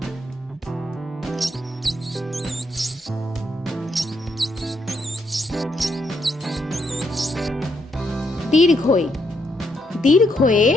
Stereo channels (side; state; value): both; normal; correlation 0.77